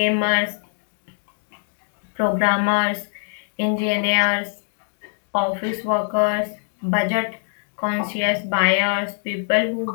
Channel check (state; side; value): silent; right; digital silence